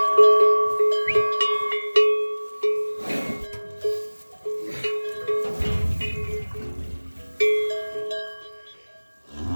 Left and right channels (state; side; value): inverted; both; correlation -1.00